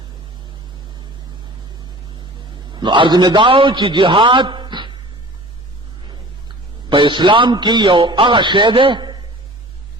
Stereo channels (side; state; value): both; normal; correlation 0.43